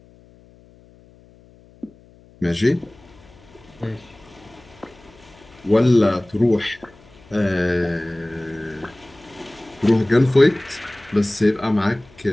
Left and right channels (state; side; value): noise; left; hum, 26 dB below the sound